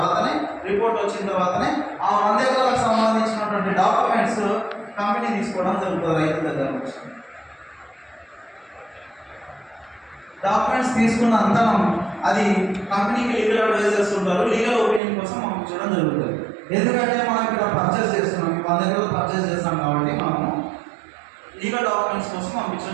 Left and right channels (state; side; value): drops out; left; at 15.0 s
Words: రిపోర్ట్ వచ్చిన తర్వాతనే ఆ 100 ఎకరాలకు సంబంధించినటువంటి డాక్యుమెంట్స్ కంపెనీ తీసుకోవడం జరుగుతుంది. రైతు దగ్గర నుంచి డాక్యుమెంట్స్ తీసుకున్న అంతరం అది కంపెనీకి లీగల్ అడ్వైజర్స్ ఉంటారు, లీగల్ ఒపీనియన్ కోసం పంపించడం జరుగుతుంది. ఎందుకంటే మనం ఇక్కడ పర్చేస్ చేస్తున్నాం, 100 ఎకరాలు పర్చేస్ చేస్తాం కాబట్టి మనము లీగల్ డాక్యుమెంట్స్ కోసం